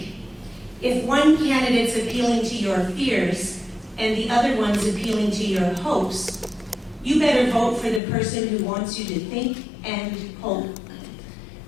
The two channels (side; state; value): right; drops out; at 8.0 s